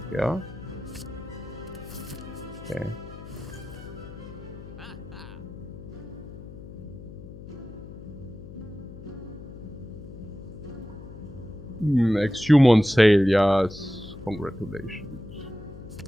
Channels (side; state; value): left; noise; hum, 14 dB below the sound